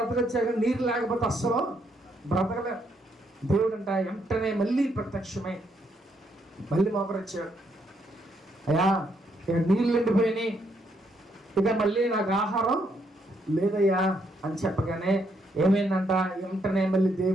నీరు లేకపోతే అస్సలు బ్రతకలే. దేవుడు అంట వెంటనే మళ్ళీ ప్రత్యక్షమై మళ్ళీ మోకరొచ్చాడు. అయ్యా, ఇక నీళ్ళు ఎండిపోయినాయి, ఇక మళ్ళీ నాకు ఆహారం లేదయ్యా అని చెప్పగానే ఏమైందంట, వెంటనే మళ్ళీ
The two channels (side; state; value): both; normal; correlation 0.74